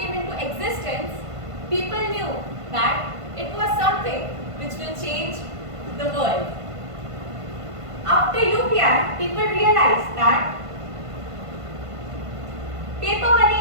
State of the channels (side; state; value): left; late; 1.5 ms